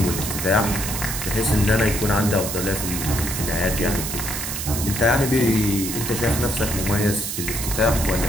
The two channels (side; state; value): right; noise; hiss, 4 dB below the sound